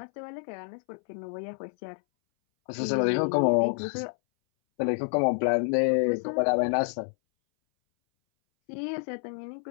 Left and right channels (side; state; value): right; silent; 59 dB below the other